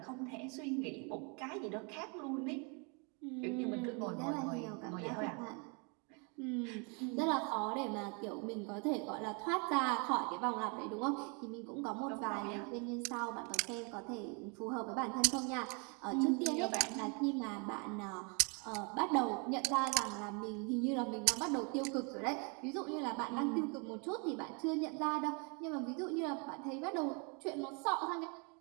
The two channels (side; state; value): left; quieter; 34.6 dB